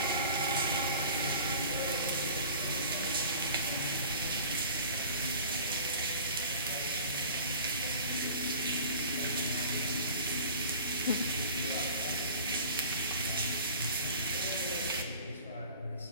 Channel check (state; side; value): inverted; both; correlation -0.42